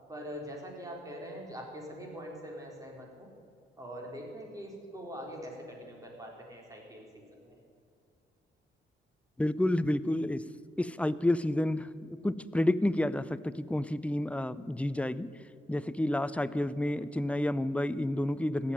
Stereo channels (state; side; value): normal; both; correlation 0.94